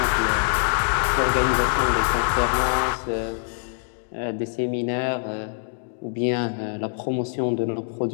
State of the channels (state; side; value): silent; right; digital silence